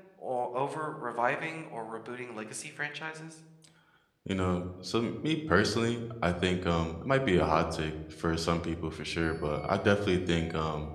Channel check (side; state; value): both; identical; correlation 1.00